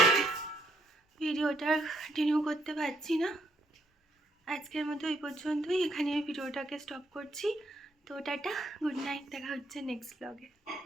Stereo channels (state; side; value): normal; both; correlation 0.72